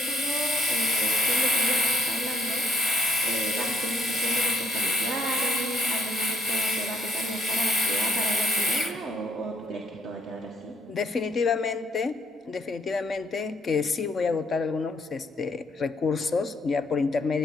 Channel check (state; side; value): normal; both; correlation 0.69